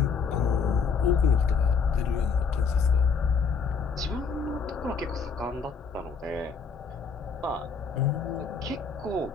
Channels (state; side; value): quieter; right; 5.5 dB